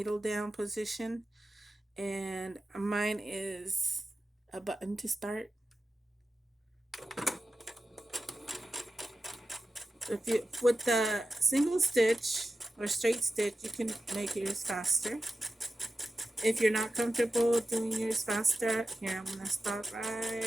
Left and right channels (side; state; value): both; normal; correlation 0.92